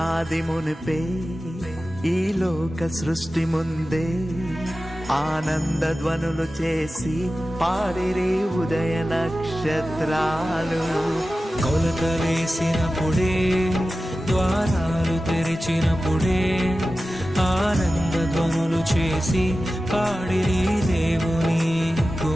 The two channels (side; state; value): both; normal; correlation 0.95